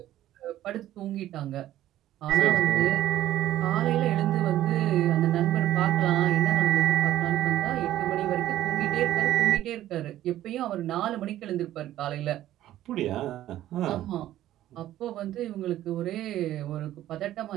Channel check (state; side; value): quieter; left; 13.4 dB